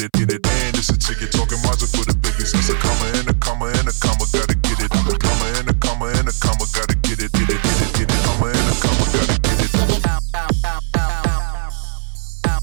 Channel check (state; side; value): silent; left; 62 dB below the other